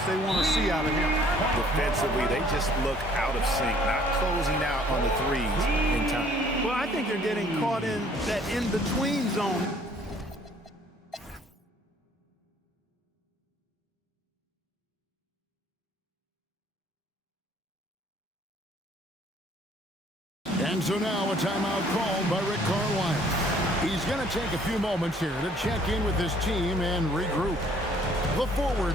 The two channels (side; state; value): both; normal; correlation 0.59